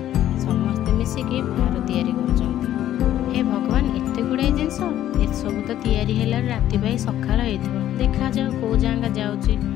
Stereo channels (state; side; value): quieter; right; 12.2 dB